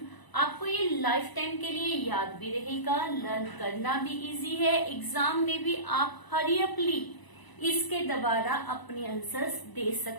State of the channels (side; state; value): right; late; 1.0 ms